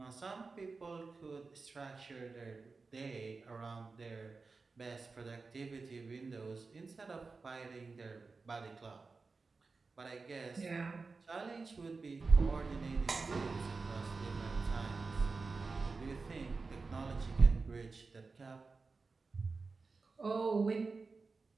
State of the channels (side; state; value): left; quieter; 4.2 dB